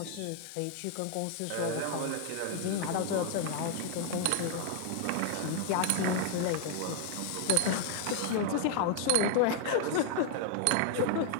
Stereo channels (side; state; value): both; different; correlation 0.00